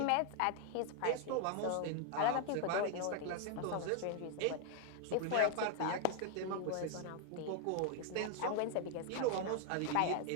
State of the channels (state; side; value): different; both; correlation 0.00